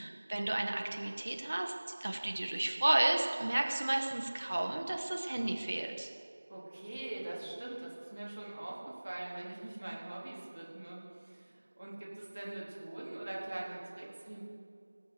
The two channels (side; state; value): both; inverted; correlation -1.00